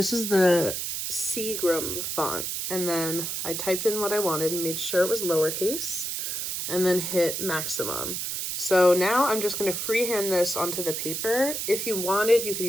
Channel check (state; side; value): noise; right; hiss, 3 dB below the sound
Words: is the Seagram font, and then I typed in what I wanted and made sure it was lowercase, and then hit maximum. So now I'm just going to freehand this onto the paper. If you wanted, you could